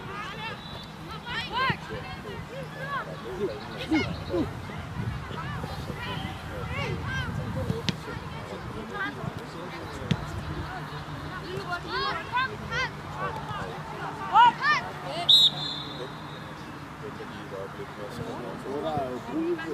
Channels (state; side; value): identical; both; correlation 1.00